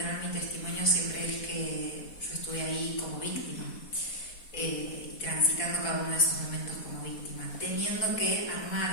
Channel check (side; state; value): right; late; 4.2 ms